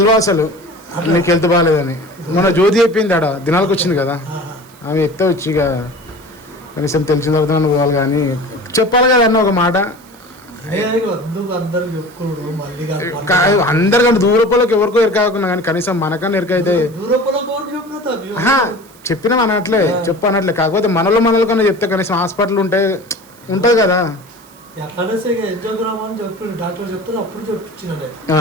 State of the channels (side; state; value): right; noise; hiss, 26 dB below the sound